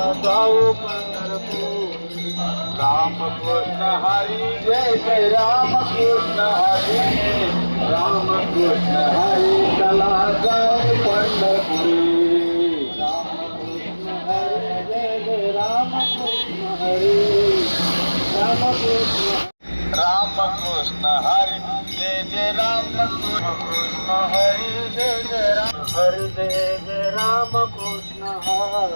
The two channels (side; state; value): both; inverted; correlation -1.00